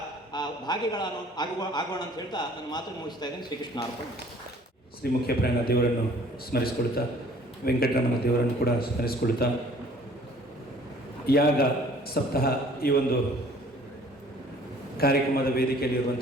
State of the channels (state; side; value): normal; both; correlation 0.54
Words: ಭಾಗಿಗಳನ್ನು ಆಗೋಣ ಅಂತ ಹೇಳ್ತಾ ನನ್ನ ಮಾತನ್ನು ಮುಗಿಸ್ತಾ ಇದ್ದೇನೆ. ಶ್ರೀಕೃಷ್ಣ ಅರ್ಪಣ. ಶ್ರೀ ಮುಖ್ಯಪ್ರಾಣ ದೇವರನ್ನು ಸ್ಮರಿಸಿಕೊಳ್ತಾ, ವೆಂಕಟರಮಣ ದೇವರನ್ನು ಕೂಡ ಸ್ಮರಿಸಿಕೊಳ್ತಾ, ಯಾಗ ಸಪ್ತಾಹ ಈ ಒಂದು ಕಾರ್ಯಕ್ರಮದ